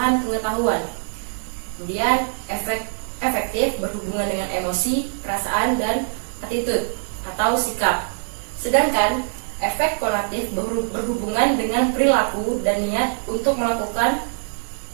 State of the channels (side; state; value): left; silent; 64 dB below the other